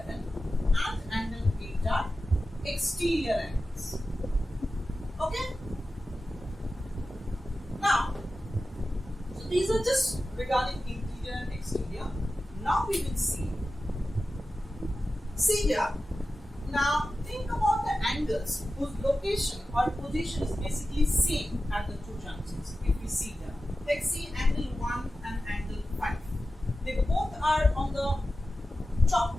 and angle 8 are exterior angles. Okay? Now, so these are just regarding interior and exterior. Now we will see here. Now think about the angles whose location or position is basically same at the two junctions. If we see here, let's see angle 1 and angle 5. They both are on the top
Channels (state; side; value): normal; both; correlation 0.94